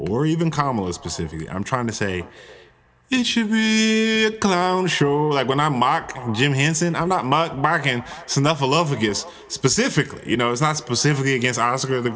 even Kamala specifically. I'm trying to say it should be a clown show. Like when I mock Jim Henson, I'm not mocking Snuffleupagus specifically. You know, it's not specifically against Oscar the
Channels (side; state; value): both; identical; correlation 1.00